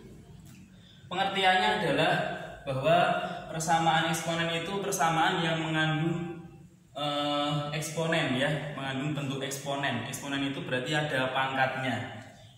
pengertiannya adalah bahwa persamaan eksponen itu persamaan yang mengandung eksponen ya, mengandung bentuk eksponen. Eksponen itu berarti ada pangkatnya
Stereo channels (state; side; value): identical; both; correlation 1.00